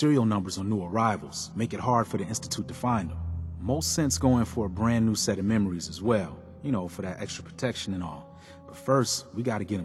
numbers on new arrivals. Make it hard for the Institute to find them. Most sense going for a brand new set of memories as well. You know, for that extra protection and all. But first, we gotta get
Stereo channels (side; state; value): both; identical; correlation 1.00